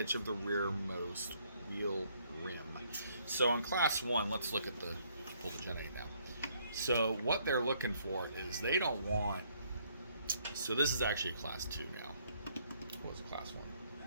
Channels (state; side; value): inverted; both; correlation -0.68